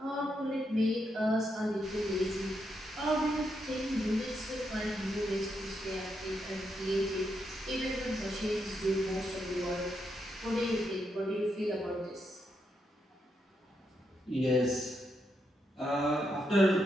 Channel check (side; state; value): both; normal; correlation 0.81